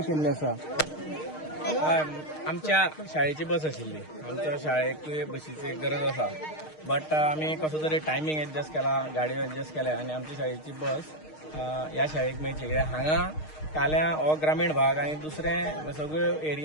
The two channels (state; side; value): late; right; 6.5 ms